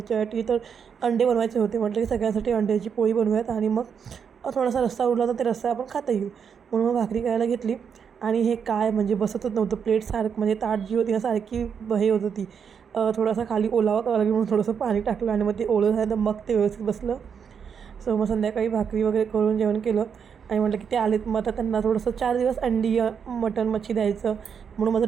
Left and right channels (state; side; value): quieter; left; 7.0 dB